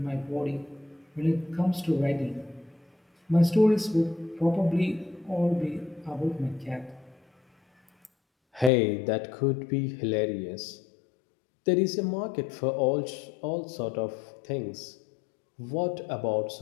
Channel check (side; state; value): right; drops out; at 8.7 s